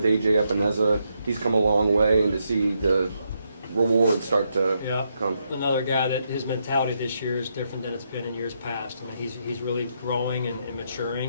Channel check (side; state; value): both; inverted; correlation -0.79